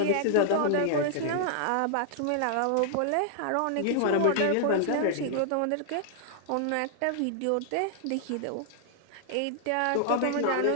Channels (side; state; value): both; different; correlation -0.01